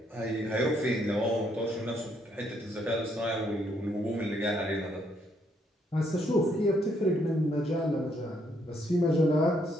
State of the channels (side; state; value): both; normal; correlation 0.72